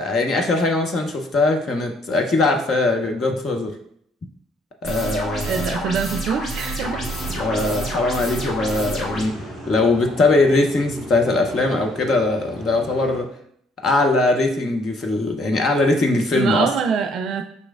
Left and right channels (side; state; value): both; normal; correlation 0.65